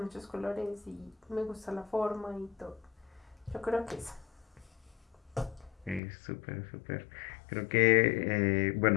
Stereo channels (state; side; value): drops out; right; at 6.0 s